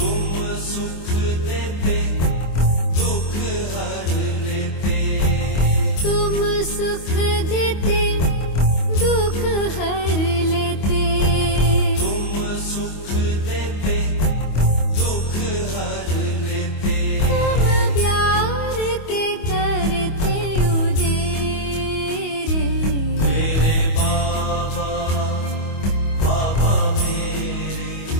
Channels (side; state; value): right; late; 25 ms